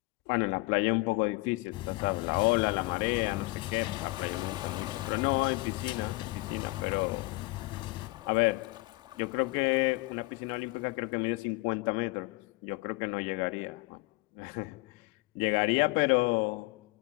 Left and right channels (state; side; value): quieter; right; 23.6 dB